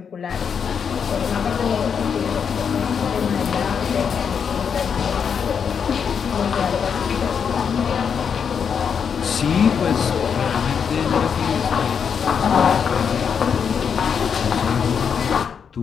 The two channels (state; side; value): quieter; right; 6.9 dB